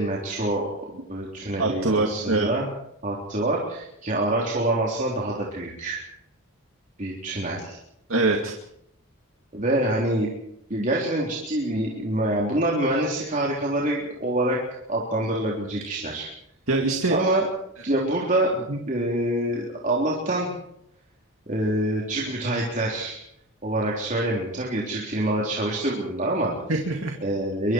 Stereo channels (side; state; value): both; normal; correlation 0.23